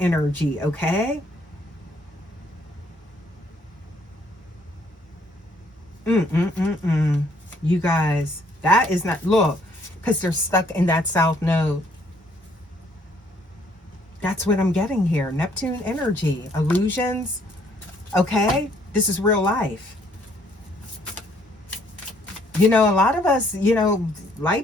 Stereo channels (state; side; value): normal; both; correlation 0.65